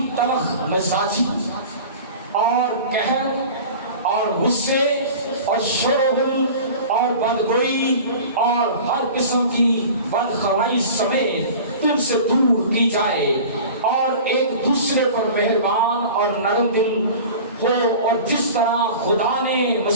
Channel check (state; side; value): inverted; both; correlation -0.38